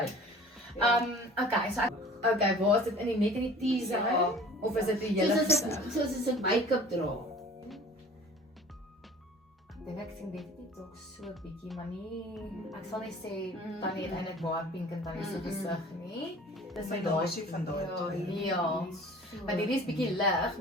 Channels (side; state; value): both; normal; correlation 0.46